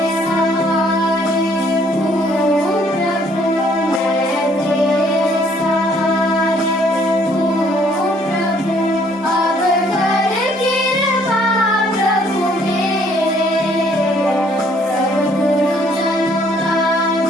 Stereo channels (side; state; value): both; normal; correlation 0.63